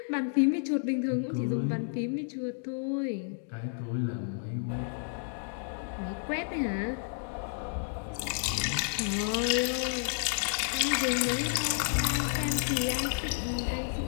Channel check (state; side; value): silent; right; digital silence